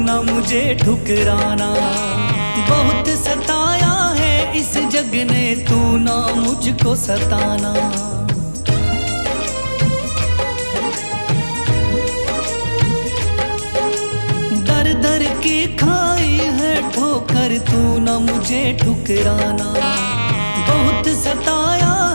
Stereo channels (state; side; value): inverted; both; correlation -1.00